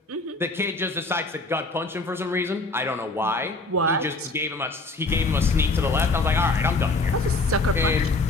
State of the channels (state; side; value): quieter; right; 3.2 dB